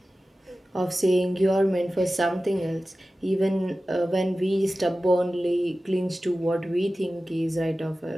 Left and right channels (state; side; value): normal; both; correlation 0.95